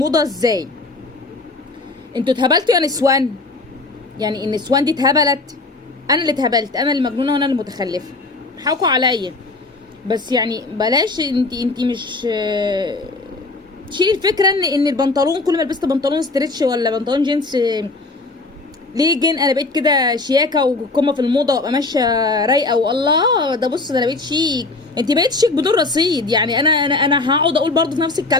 ازاي؟ انتوا اتهبلتوا يا نسوان، يعني النسوان دي اتهبلت. انا اللي اتهبلت، انا اللي مجنونه وانا اللي متخلفه، حاكوا عليا. بس يعني بلاش، انت مش تشيلي الفكره ان البنطلون كل ما لبست بنطلون ستريتش ولا بنطلون جينز ليه جن انا بقيت كده شياكه وقمه في الموضه وابقى ماشيه رايقه والله ده بص ده انا بقيت شيك. انت بقيت شيك بدون رصيد، يعني انا هقعد اقول برضه في نفس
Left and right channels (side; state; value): right; quieter; 3.3 dB